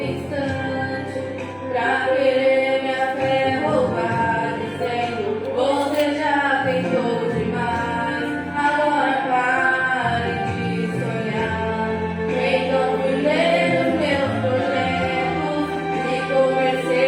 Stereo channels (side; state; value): both; identical; correlation 1.00